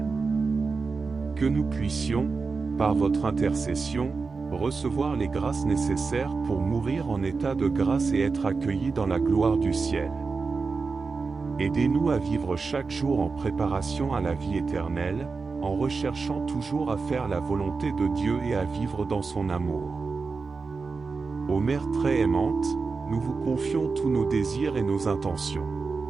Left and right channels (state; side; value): quieter; left; 4.5 dB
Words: Que nous puissions, par votre intercession, recevoir les grâces nécessaires pour mourir en état de grâce et être accueillis dans la gloire du ciel. Aidez-nous à vivre chaque jour en préparation à la vie éternelle, en recherchant toujours à faire la volonté de Dieu et à vivre dans son amour. Ô Mère très aimante, nous vous confions tous nos désirs et nos intentions.